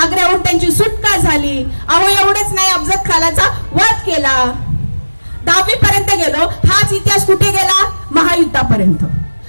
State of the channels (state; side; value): inverted; both; correlation -1.00